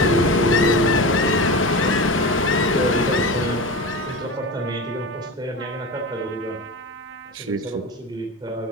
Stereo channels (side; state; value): both; normal; correlation 0.27